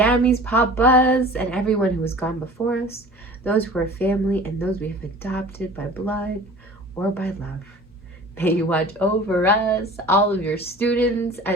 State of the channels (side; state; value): both; normal; correlation 0.42